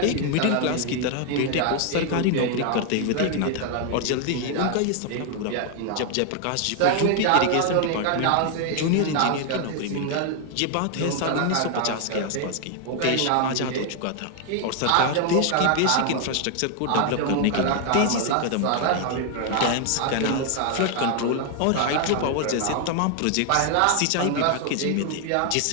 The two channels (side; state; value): both; different; correlation 0.00